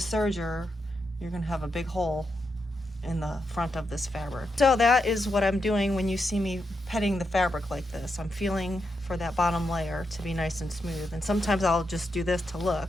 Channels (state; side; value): normal; both; correlation 0.84